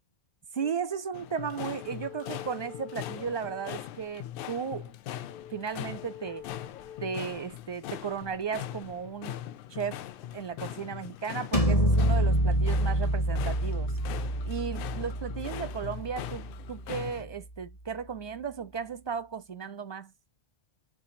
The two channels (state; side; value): late; right; 1.2 ms